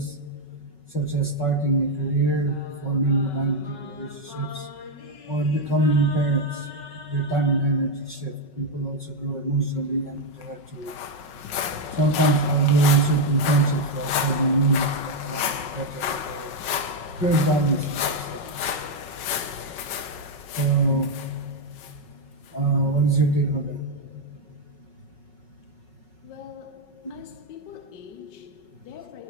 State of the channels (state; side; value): late; right; 5.4 ms